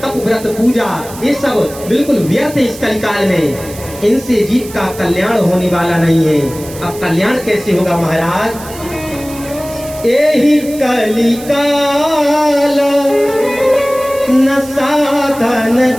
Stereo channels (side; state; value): right; noise; hiss, 16 dB below the sound